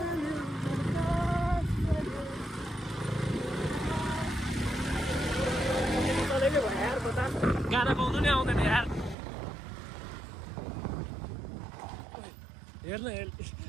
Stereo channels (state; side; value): drops out; left; at 9.2 s